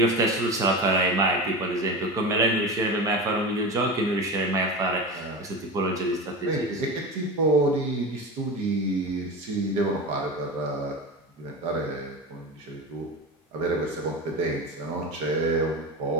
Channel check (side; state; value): both; normal; correlation 0.26